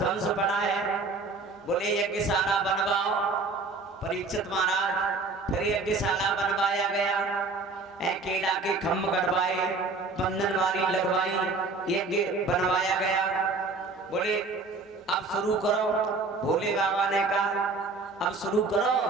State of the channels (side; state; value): left; quieter; 3.7 dB